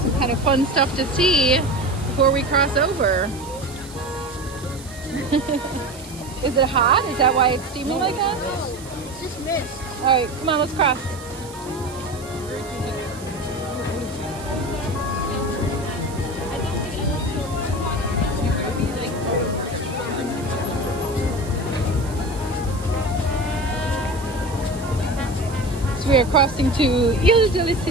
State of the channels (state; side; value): noise; right; hiss, 18 dB below the sound